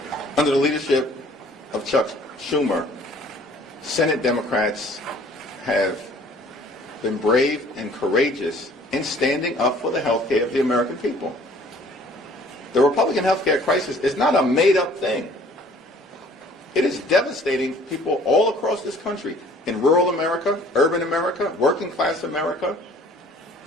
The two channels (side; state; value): both; normal; correlation 0.54